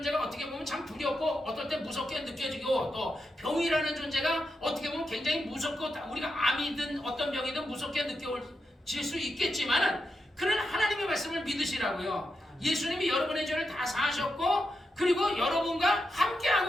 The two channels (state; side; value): normal; both; correlation 0.86